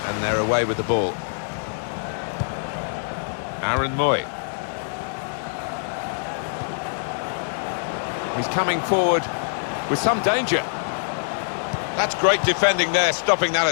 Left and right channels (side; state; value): right; silent; digital silence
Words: and they're away with the ball. Aaron Moy. He's coming forward with some danger. That's great defending there, stopping that